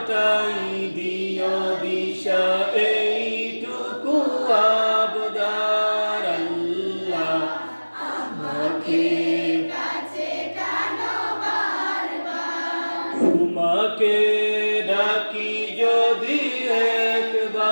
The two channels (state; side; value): inverted; both; correlation -1.00